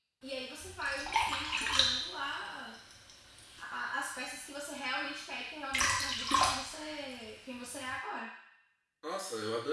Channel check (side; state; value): both; identical; correlation 1.00